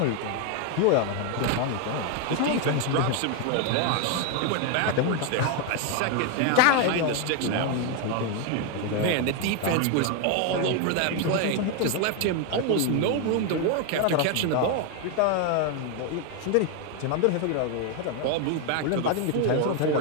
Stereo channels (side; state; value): both; different; correlation 0.01